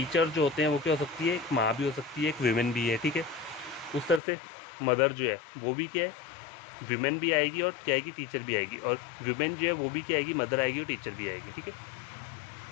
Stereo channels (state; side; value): drops out; right; at 4.2 s